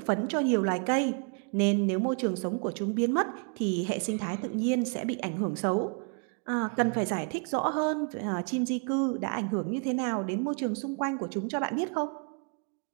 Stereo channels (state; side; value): quieter; left; 39.8 dB